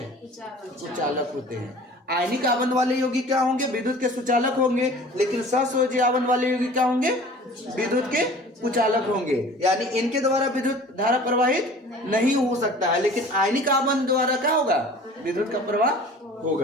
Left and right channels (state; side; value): normal; both; correlation 0.45